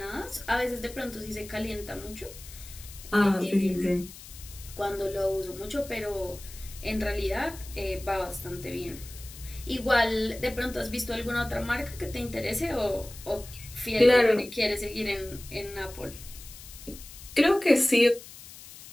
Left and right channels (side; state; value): left; noise; hiss, 16 dB below the sound